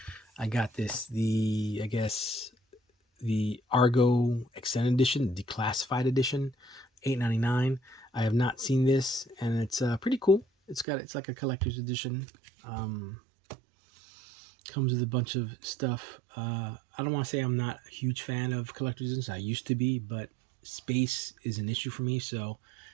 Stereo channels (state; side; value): drops out; left; at 10.9 s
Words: I got this, the Argo Extended Edition, Declassified Edition, $8.99. I have not seen this, and it's pretty cool. It's like a collector's edition. Comes with a bunch of stuff. I don't want to say I'm not a huge fan of collector's editions. I used to be, but space is an issue for me, so